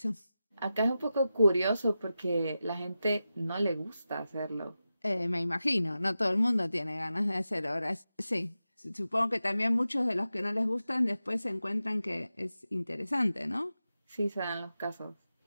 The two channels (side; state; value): both; inverted; correlation -0.92